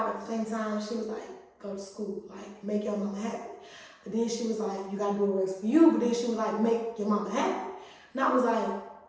but at the same time, she was like, go to school, like, make your mama happy. But then she was like, you gotta do what works for you. But then she was like, make your mama happy. And I was like,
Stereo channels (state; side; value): identical; both; correlation 1.00